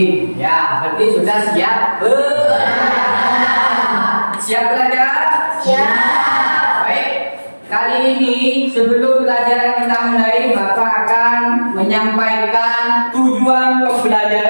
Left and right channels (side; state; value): both; inverted; correlation -1.00